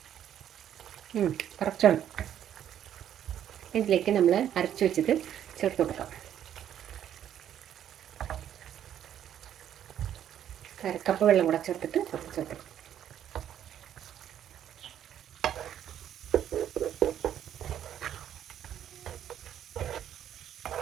കറക്റ്റാണ്. ഇതിലേക്ക് നമ്മൾ അരച്ച് വെച്ചത് ചേർത്ത് കൊടുക്കാം. 1/2 കപ്പ് വെള്ളം കൂടെ ചേർത്തിട്ട് ചേർത്ത്.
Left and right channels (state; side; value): quieter; left; 10.3 dB